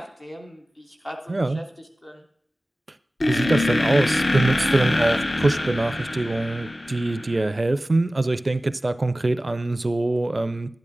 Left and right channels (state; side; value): normal; both; correlation 0.97